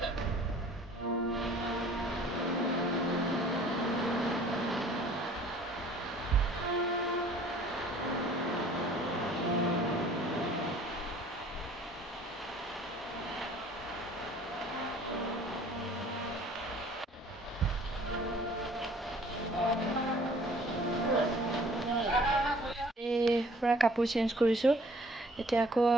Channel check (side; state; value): both; normal; correlation 0.53